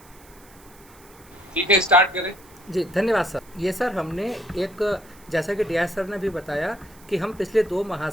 ठीक है, स्टार्ट करें। जी धन्यवाद सर। ये सर हमने एक, जैसा कि डियाज सर ने भी बताया कि हम पिछले 2 माह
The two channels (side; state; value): right; noise; hiss, 25 dB below the sound